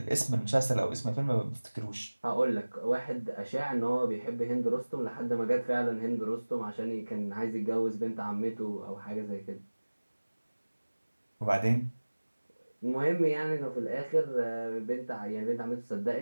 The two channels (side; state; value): both; inverted; correlation -1.00